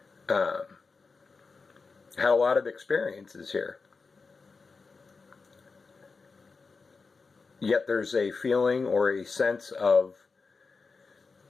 Had a lot of experiences here. Yet there's a feeling or a sense of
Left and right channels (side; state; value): right; quieter; 4.5 dB